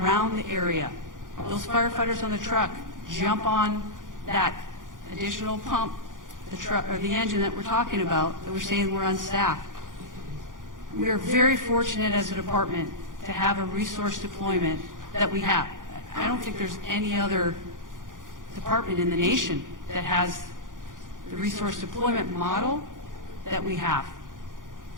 the area. Those firefighters on the truck jump on that additional pump, the truck or the engine that we're talking about, that we're saying we're unstaffed. We are very fortunate as a department to have a resource deployment that we have. I don't think there's any other department in the nation that has the resource deployment model that we have.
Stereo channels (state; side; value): late; left; 0.89 ms